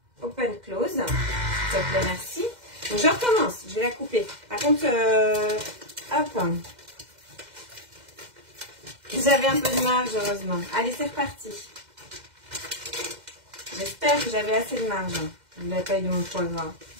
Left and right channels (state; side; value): late; left; 2.1 ms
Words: Open, close. S'il te plaît, merci. Donc, je recommence. Je vais la couper. Par contre, hop. J'avais un peu de marge, heureusement. Allez, c'est reparti. J'espère que j'avais assez de marge, vu la taille de mon foie gras.